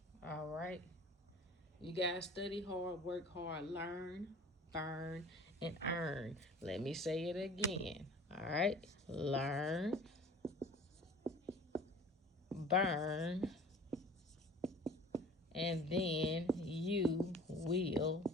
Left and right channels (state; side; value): normal; both; correlation 0.45